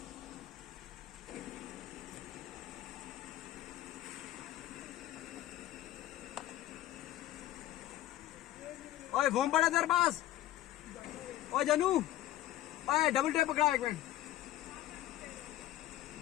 ओए फोन पड़ा तेरे पास। ओए जानू, ओए डबल टेप पकड़ा एक मिनट।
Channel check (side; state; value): right; quieter; 14.1 dB